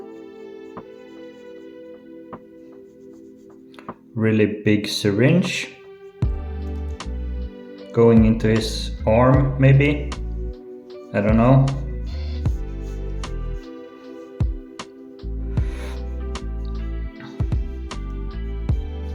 Really big syringe going into his arm, maybe? I don't know.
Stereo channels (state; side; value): identical; both; correlation 1.00